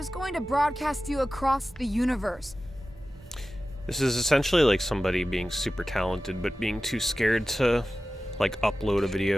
going to broadcast you across the universe. This is essentially like somebody being super talented, but being too scared to, like, upload a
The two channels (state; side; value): normal; both; correlation 0.95